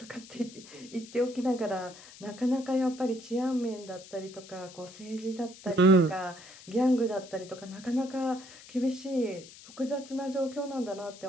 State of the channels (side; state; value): left; noise; hiss, 18 dB below the sound